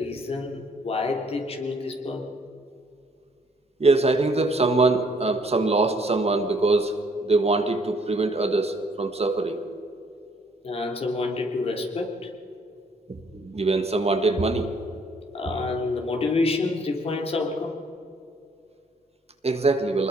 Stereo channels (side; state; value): both; normal; correlation 0.64